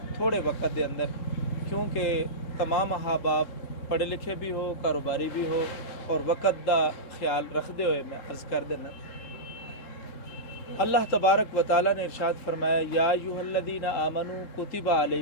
تھوڑے وقت دے اندر، کیونکہ تمام احباب پڑھے لکھے بھی ہو، کاروباری بھی ہو، اور وقت دا خیال رکھتے ہوئے میں عرض کر دینا۔ اللہ تبارک و تعالیٰ نے ارشاد فرمایا یا ایھا الذین آمنوا کتب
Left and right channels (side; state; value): right; late; 3.8 ms